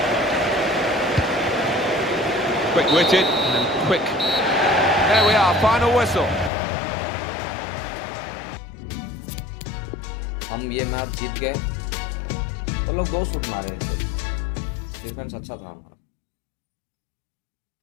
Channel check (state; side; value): drops out; right; at 6.5 s